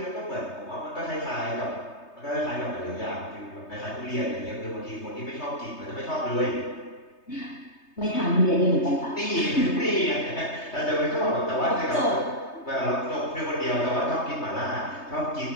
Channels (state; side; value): late; right; 3.2 ms